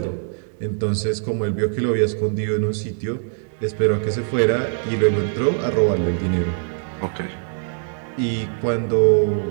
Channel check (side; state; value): left; silent; digital silence